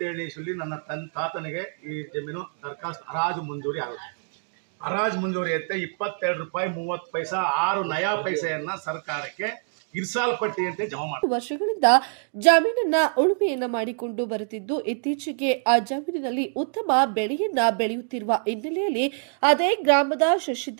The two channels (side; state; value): left; silent; 57 dB below the other